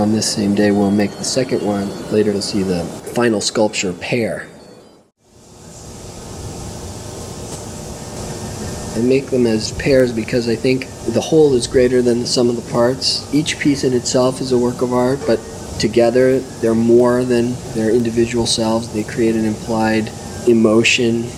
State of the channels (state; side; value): identical; both; correlation 1.00